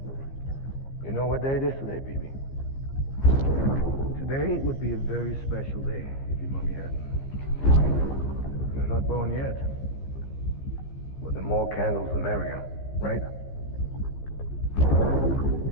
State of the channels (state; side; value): late; right; 15 ms